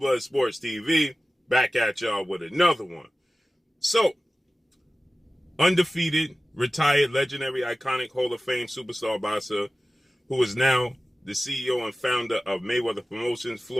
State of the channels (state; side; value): normal; both; correlation 0.96